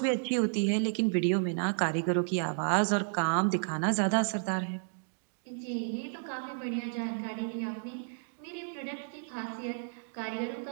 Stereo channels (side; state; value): left; silent; digital silence